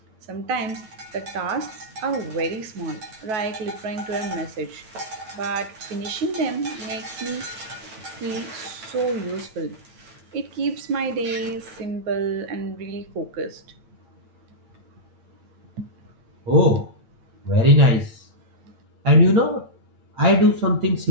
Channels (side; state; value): left; late; 9.3 ms